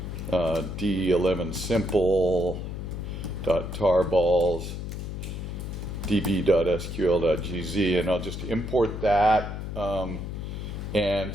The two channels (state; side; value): noise; left; hum, 6 dB below the sound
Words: D11 simple .tarballs db.sql.gz, and I'll just import that.